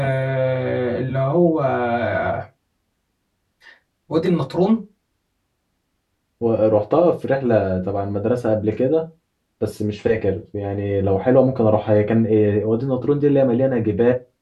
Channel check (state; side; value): identical; both; correlation 1.00